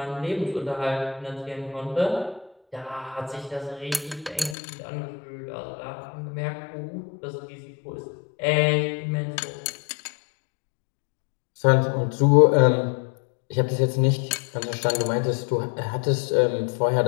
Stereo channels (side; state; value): right; drops out; at 4.5 s